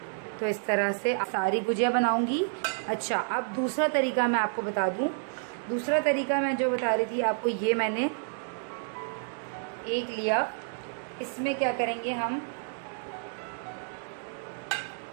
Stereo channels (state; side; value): silent; left; digital silence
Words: तो इस तरह से सारी गुजिया बनाऊंगी। अच्छा, अब दूसरा तरीका मैं आपको बता दूं। दूसरा तरीका मैं जो बता रही थी आपको, ये मैंने एक लिया, इसमें क्या करेंगे, हम